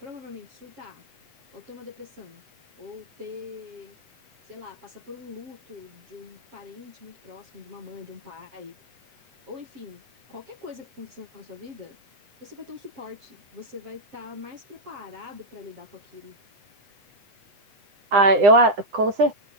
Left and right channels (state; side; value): late; left; 8.1 ms